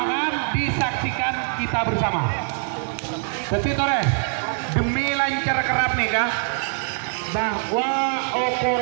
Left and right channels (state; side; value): silent; left; 63 dB below the other